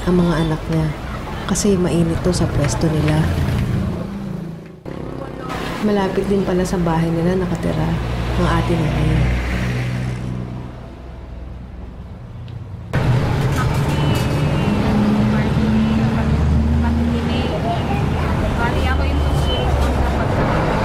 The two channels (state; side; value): identical; both; correlation 1.00